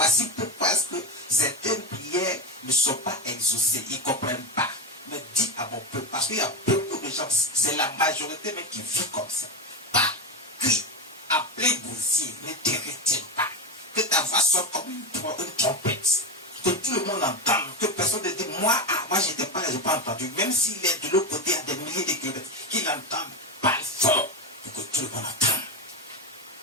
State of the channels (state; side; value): normal; both; correlation 0.16